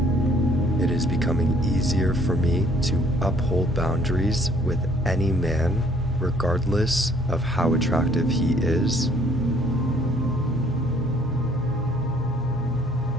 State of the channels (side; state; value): both; normal; correlation 0.61